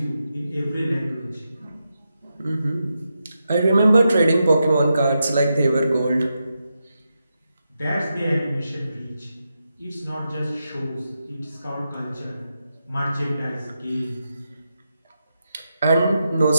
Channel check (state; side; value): inverted; both; correlation -0.86